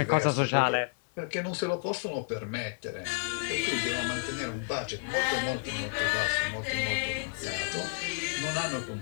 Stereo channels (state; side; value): silent; right; digital silence